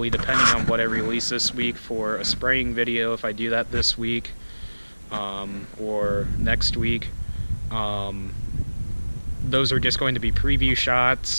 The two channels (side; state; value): both; inverted; correlation -1.00